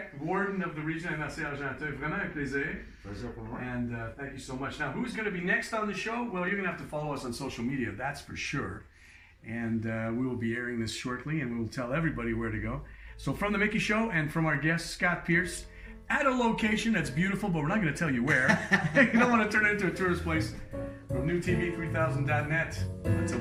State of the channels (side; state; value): both; identical; correlation 1.00